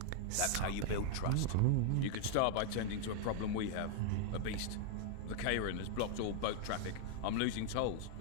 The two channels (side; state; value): both; different; correlation 0.00